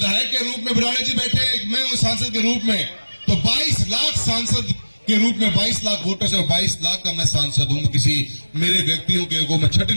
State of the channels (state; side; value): inverted; both; correlation -1.00